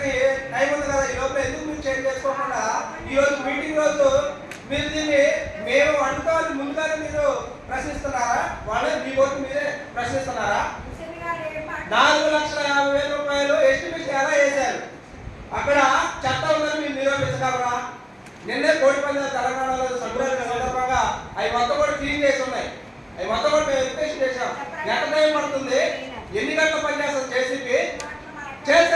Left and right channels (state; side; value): identical; both; correlation 1.00